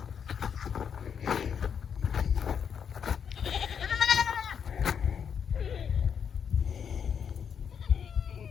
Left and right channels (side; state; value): right; quieter; 7.4 dB